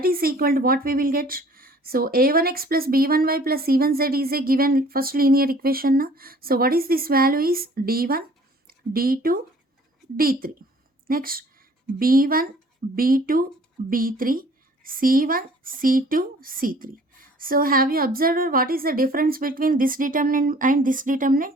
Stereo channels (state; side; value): normal; both; correlation 0.53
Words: is equal to what we will get. So a1x plus b1y plus c1z is a given first linear equation now. So what is this value is d1, d2, d3. Next b1, b2, b3, c1, c2, c3. So have you observed what is the difference between this determinant and this determinant?